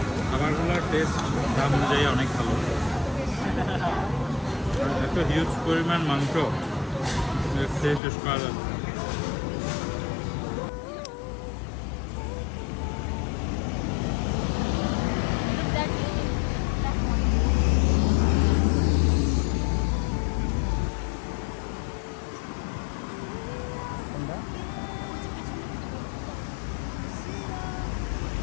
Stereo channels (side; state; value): right; drops out; at 8.0 s